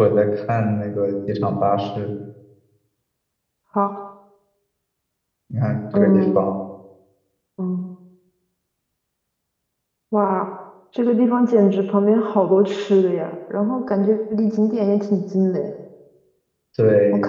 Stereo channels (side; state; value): both; identical; correlation 1.00